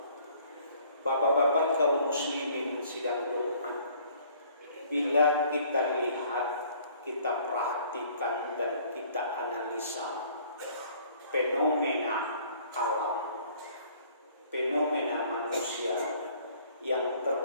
Bapak-bapak kaum muslimin sidang Jumat, bila kita lihat, kita perhatikan dan kita analisa fenomena alam, fenomena manusia yang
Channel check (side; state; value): both; inverted; correlation -0.57